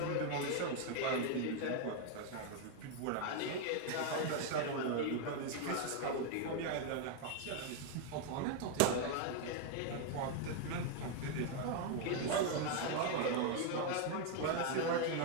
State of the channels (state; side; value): different; both; correlation 0.01